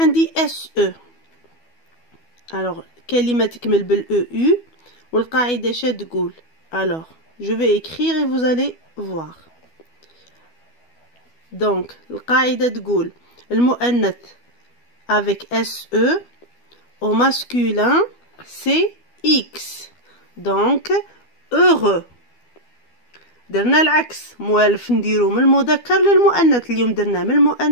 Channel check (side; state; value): right; late; 12 ms